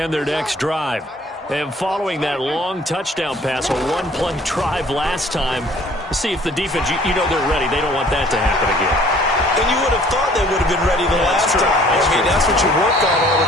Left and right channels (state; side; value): normal; both; correlation 0.55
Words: their next drive. And following that long touchdown pass, a one-play drive last time, see if the defense, you know they're ready. They don't want that to happen again. And you would have thought they would have been ready the last time. That's what you work on all